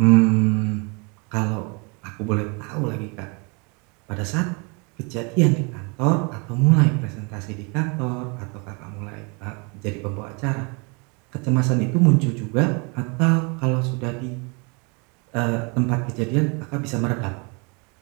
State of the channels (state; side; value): quieter; left; 32.2 dB